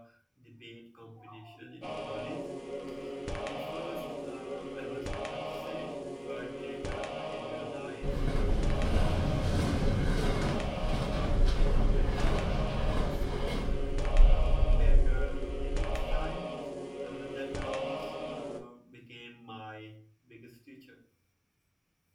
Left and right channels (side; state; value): both; identical; correlation 1.00